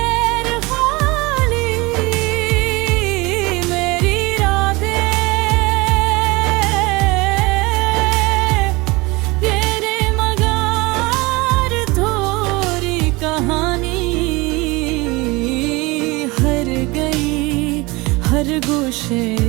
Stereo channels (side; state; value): left; quieter; 23.7 dB